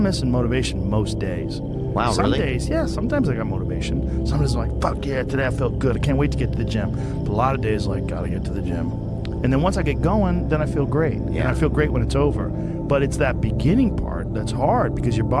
missing motivation most days. Wow, Some really? days, yeah, sometimes I got motivation. Sometimes I'm like, fuck yeah, today I felt good. I can't wait to get to the gym. But a lot of days, like, gotta get to the gym. And then once I get going, then I feel great. Yeah. And I feel great when it's over. But it's that beginning part that's hard, because your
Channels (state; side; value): identical; both; correlation 1.00